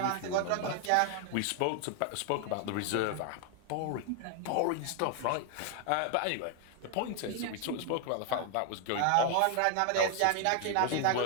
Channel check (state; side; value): different; both; correlation 0.00